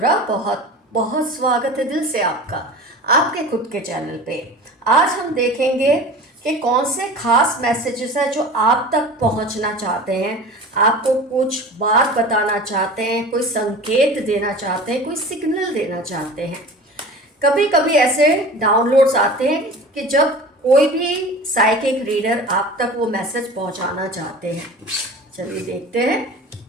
बहुत बहुत स्वागत है दिल से आपका आपके खुद के चैनल पे। आज हम देखेंगे कि कौन से खास मैसेजेस हैं जो आप तक पहुंचना चाहते हैं, आपको कुछ बात बताना चाहते हैं, कोई संकेत देना चाहते हैं, कोई सिग्नल देना चाहते हैं। कभी कभी ऐसे डाउनलोड्स आते हैं कि जब कोई भी साइकिक रीडर आप तक वो मैसेज पहुंचाना चाहते हैं। चलिए देखते हैं,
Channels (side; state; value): both; normal; correlation 0.37